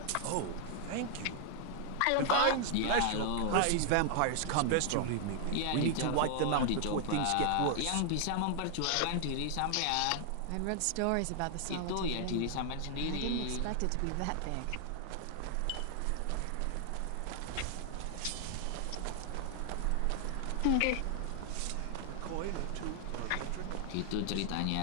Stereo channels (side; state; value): both; different; correlation 0.00